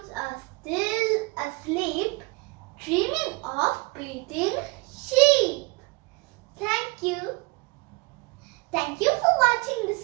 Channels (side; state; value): left; quieter; 26.8 dB